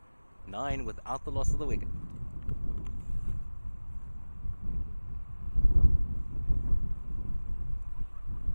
9 without the loss of the wicket.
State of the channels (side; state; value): both; inverted; correlation -1.00